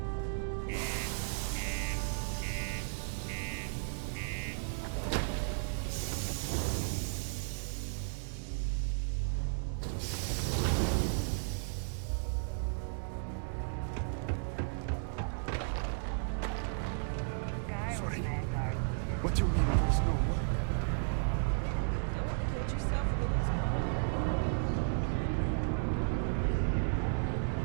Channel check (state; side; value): silent; left; digital silence